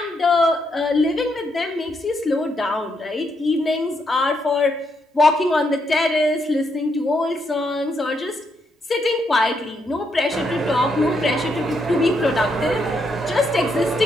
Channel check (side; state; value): both; normal; correlation 0.78